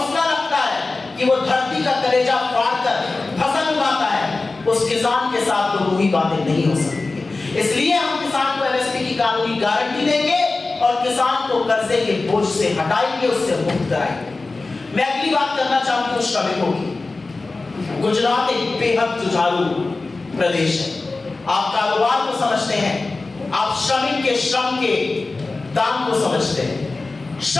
रखता है कि वो धरती का कलेजा फाड़कर फसल उगाता है, उस किसान के साथ तो वही बातें नहीं हो सकती। इसलिए हम किसान को एमएसपी की कानूनी गारंटी देंगे और किसान को कर्जे के बोझ से हटाएंगे, उससे मुक्त कराएंगे। मैं अगली बात करना चाहती हूं श्रमिकों की। गुजरात एक बेहद जुझारू प्रदेश है। आप कारोबार को समझते हैं, आप श्रमिक के श्रम के दाम को समझते हैं।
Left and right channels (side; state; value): right; quieter; 3.5 dB